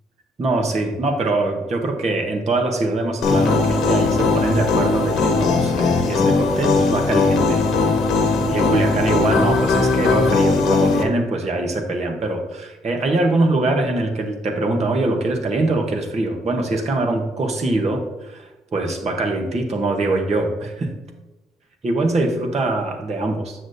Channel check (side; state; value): both; normal; correlation 0.68